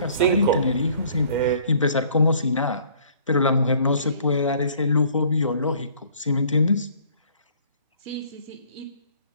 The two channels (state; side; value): inverted; both; correlation -0.56